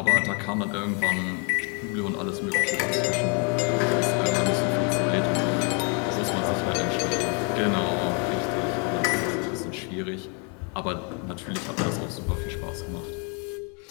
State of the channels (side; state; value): right; quieter; 36.8 dB